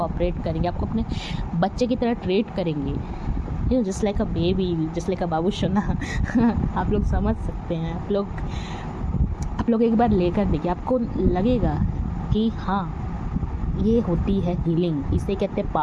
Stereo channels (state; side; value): identical; both; correlation 1.00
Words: करेंगे, आपको अपने बच्चे की तरह ट्रीट करेंगे, you just like a baby, just like a बाबू सोना। आप लोग समझ सकते हैं। आप लोग एक बार लेकर देखिए, आपको लगेगा कि हाँ, ये होती है हीलिंग, इसे कहते हैं